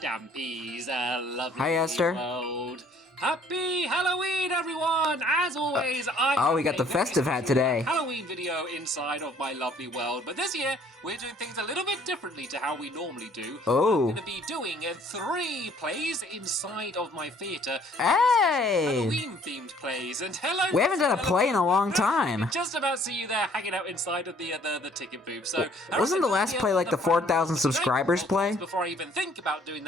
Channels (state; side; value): normal; both; correlation 0.59